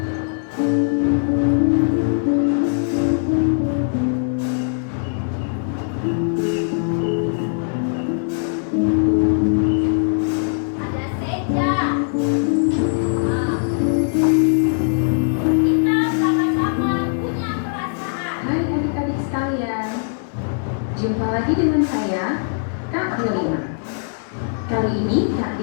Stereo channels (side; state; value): right; silent; digital silence